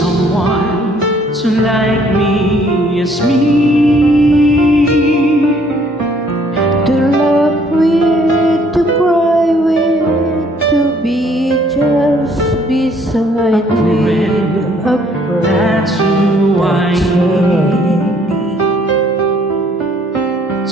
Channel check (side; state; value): both; normal; correlation 0.62